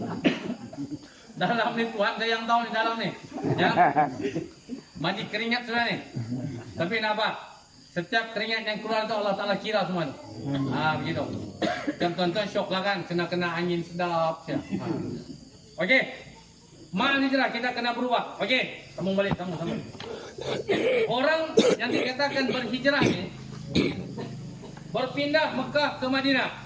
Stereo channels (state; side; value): identical; both; correlation 1.00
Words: Dalam ni Tuhan saya yang tahu ni dalam ni. Ya. Mandi keringat sudah ni. Tapi nak apa? Setiap keringat yang keluar tu Allah Ta'ala kira semua. Begitu. Dan tuan-tuan syok lah kan. Kena angin sedap. Okey. Mal hijrah kita kena berubah. Okey. Sambung balik. Sambung. Orang yang dikatakan berhijrah ni. Berpindah Mekah ke Madinah.